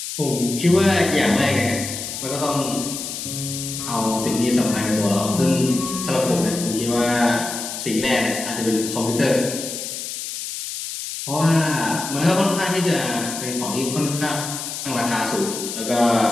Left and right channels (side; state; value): left; noise; hiss, 6 dB below the sound